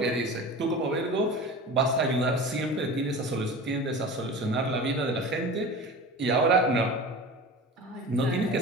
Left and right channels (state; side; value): normal; both; correlation 0.34